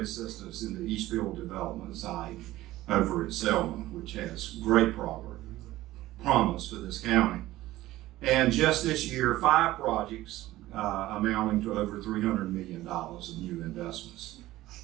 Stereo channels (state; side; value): quieter; left; 16.3 dB